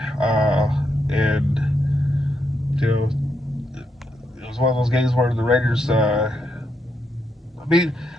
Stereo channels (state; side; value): normal; both; correlation 0.80